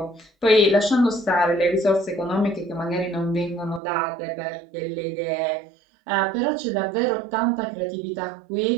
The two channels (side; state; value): left; drops out; at 3.8 s